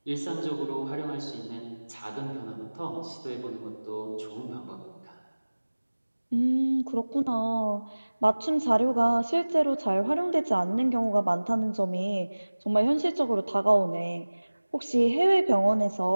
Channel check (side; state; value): both; inverted; correlation -1.00